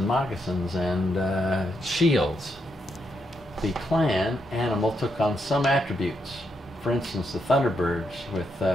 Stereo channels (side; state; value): both; normal; correlation 0.79